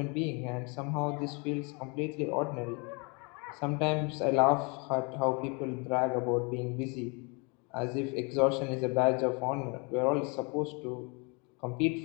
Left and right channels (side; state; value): right; quieter; 31.9 dB